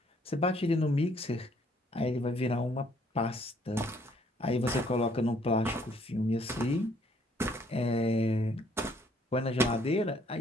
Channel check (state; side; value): normal; both; correlation 0.64